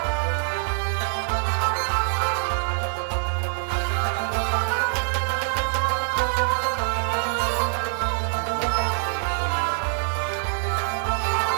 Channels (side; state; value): left; silent; digital silence